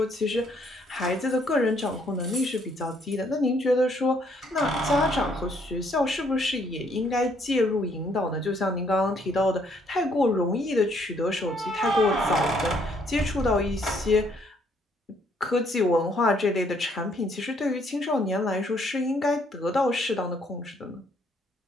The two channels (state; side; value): normal; both; correlation 0.67